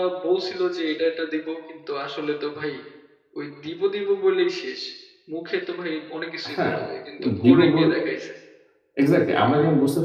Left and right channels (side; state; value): both; identical; correlation 1.00